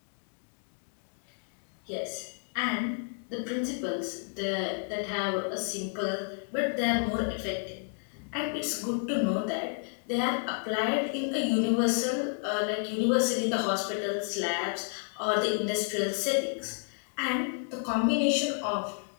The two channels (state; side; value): silent; right; 57 dB below the other